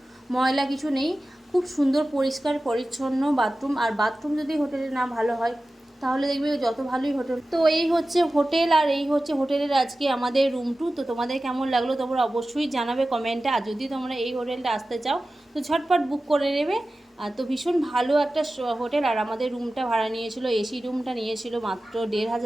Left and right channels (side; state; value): both; normal; correlation 0.95